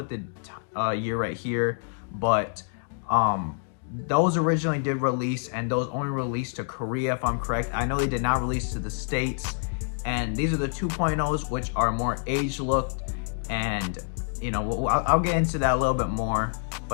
the year right here, but those originally did release, and those only released to Korea, if I'm correct. I know they did not release to the States, and these are the 2.0s, which are more age looked. And you know, I'll get into that a little bit more,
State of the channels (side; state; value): right; silent; digital silence